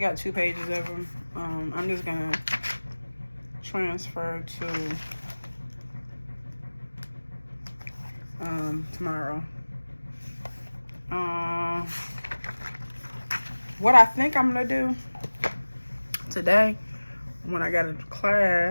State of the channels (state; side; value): inverted; both; correlation -1.00